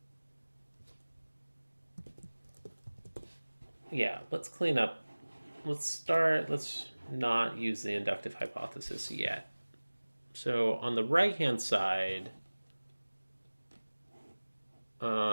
Yeah, let's clean up. Let's not use the inductive hypothesis yet. So on the right-hand side,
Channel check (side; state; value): both; inverted; correlation -1.00